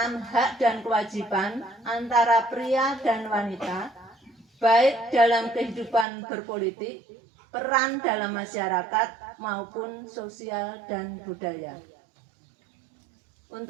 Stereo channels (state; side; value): drops out; left; at 6.1 s